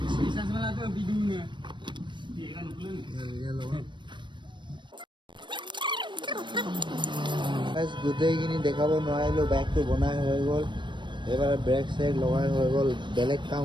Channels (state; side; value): late; left; 0.22 ms